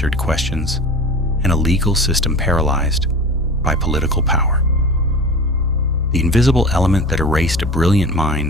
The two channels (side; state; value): both; normal; correlation 0.35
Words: questions, and a legal system paralyzed by political power. The invisible element that erased a brilliant